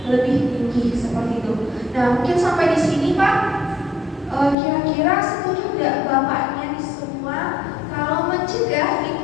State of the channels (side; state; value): right; drops out; at 4.5 s